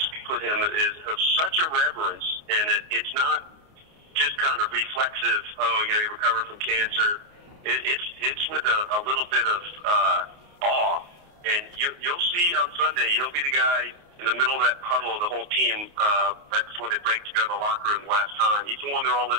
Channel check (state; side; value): late; left; 29 ms